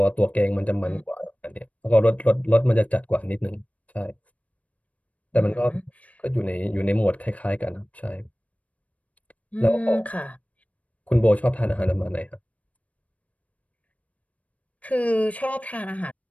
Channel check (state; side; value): late; right; 0.067 ms